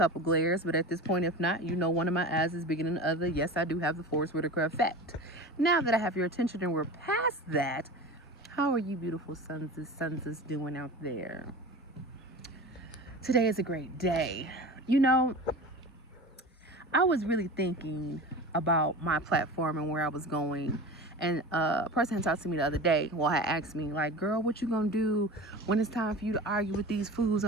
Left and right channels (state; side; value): normal; both; correlation 0.32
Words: glares, but at this point, if not, you know one of my eyes is bigger than the other. Yes, I do have the Forrest Whitaker effect. Now that I have your attention and we're past that, how are you beautiful sons doing out there? Today is a great day. You know, I was really thinking about my platform and where I was going. And a person had talked to me the other day, well, had asked me, like, girl, what you gonna do when it's time for you to argue with these fools